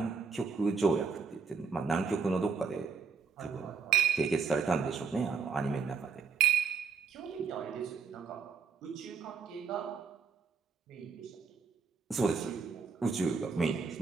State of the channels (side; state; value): left; quieter; 5.4 dB